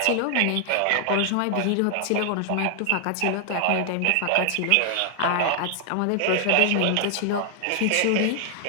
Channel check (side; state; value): both; different; correlation 0.00